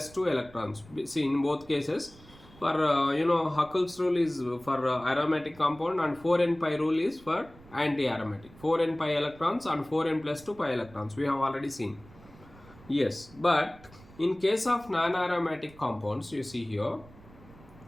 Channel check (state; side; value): noise; right; rumble, 23 dB below the sound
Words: 2 electrons. See, in both cases, for Huckel's rule is for aromatic compound and 4n pi rule is for anti-aromatic. 4n pi electrons and 4n plus 2 pi electrons. We have already seen. Yes, but in case of non-aromatic compounds, you see here,